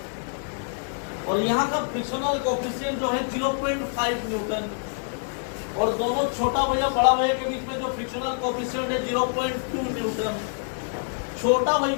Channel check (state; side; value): silent; right; 61 dB below the other